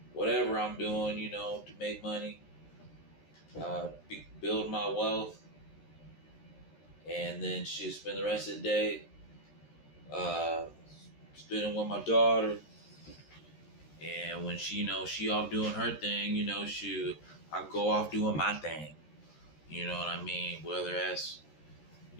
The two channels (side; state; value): right; late; 13 ms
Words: whatever I'm doing, to make money, build my wealth, and then she spend the rest of the day spending with my daughter. And when she off doing her thing, I go off doing my thing. You know what I mean? Whether that's